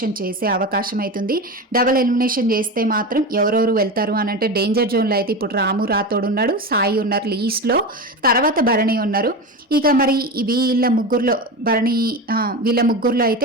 చేసే అవకాశం అవుతుంది. డబుల్ ఎలిమినేషన్ చేస్తే మాత్రం ఎవరెవరు వెళ్తారు అని అంటే డేంజర్ జోన్లో అయితే ఇప్పుడు రాము రాథోడ్ ఉన్నాడు, సాయి ఉన్నారు లీస్ట్లో, తర్వాత భరణి ఉన్నారు. ఇక మరి వీళ్ళ ముగ్గురులో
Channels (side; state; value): both; normal; correlation 0.23